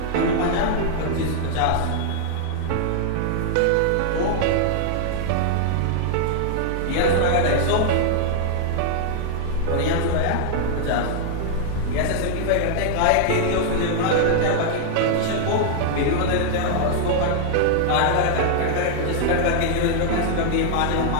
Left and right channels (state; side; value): different; both; correlation -0.01